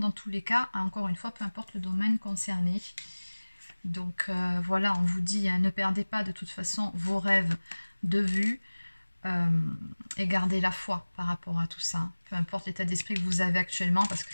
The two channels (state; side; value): inverted; both; correlation -1.00